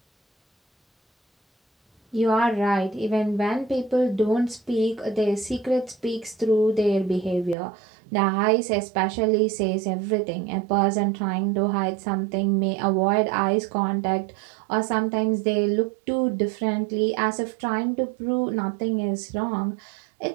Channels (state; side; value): drops out; left; at 7.6 s